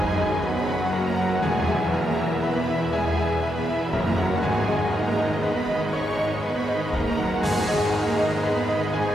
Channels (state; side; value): normal; both; correlation 0.83